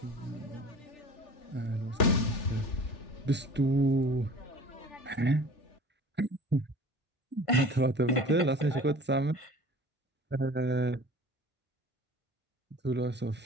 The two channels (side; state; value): both; normal; correlation 0.43